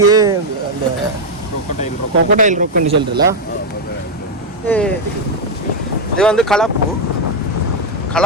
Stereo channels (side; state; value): both; normal; correlation 0.02